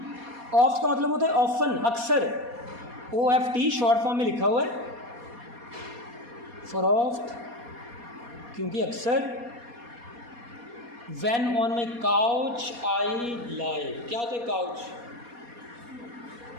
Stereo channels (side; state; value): left; late; 4.2 ms